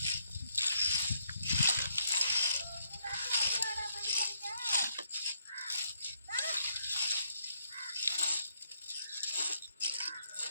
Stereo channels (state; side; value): inverted; both; correlation -0.73